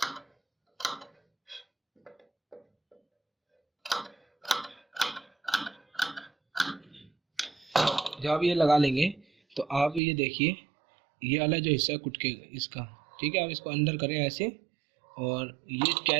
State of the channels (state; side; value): drops out; left; at 10.0 s